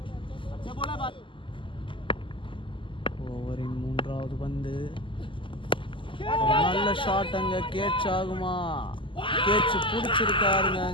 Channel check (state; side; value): late; right; 0.25 ms